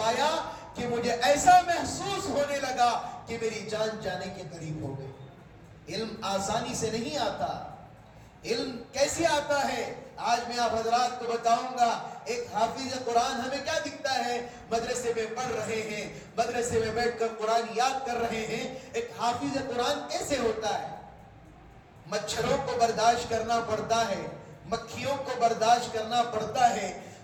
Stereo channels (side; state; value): both; identical; correlation 1.00